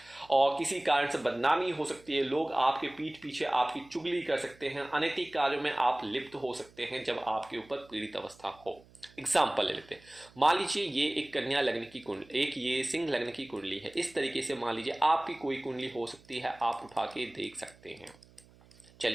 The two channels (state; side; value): noise; right; hum, 26 dB below the sound